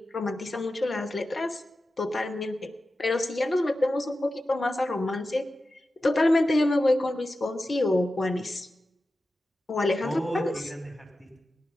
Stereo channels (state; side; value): normal; both; correlation 0.93